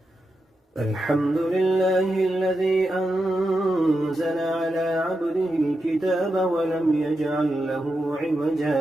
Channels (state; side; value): normal; both; correlation 0.88